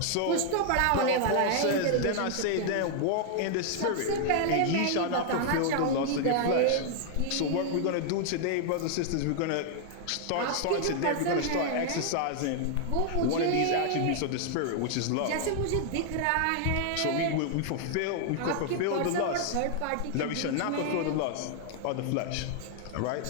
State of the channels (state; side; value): different; both; correlation 0.00